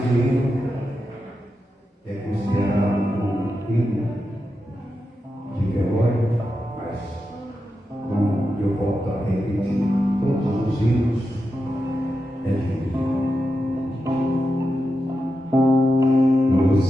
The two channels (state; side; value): normal; both; correlation 0.89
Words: esse hino é considerado um hino de velório, mas como eu volto a repetir, todos os hinos é de vida. No